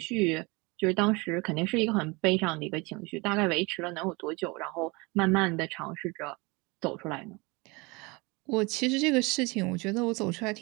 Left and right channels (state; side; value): quieter; left; 26.2 dB